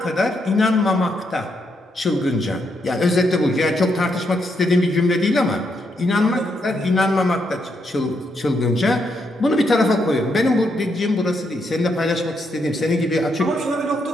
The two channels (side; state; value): both; normal; correlation 0.78